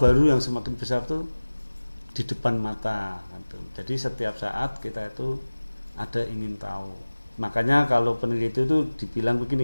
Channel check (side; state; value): both; inverted; correlation -1.00